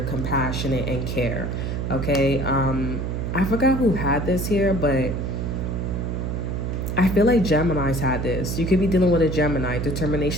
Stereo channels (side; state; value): right; noise; hum, 2 dB below the sound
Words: compassionate, and care. Okay? I forgot who had this here, but I feel like Geminis had this. You could be dealing with a Gemini,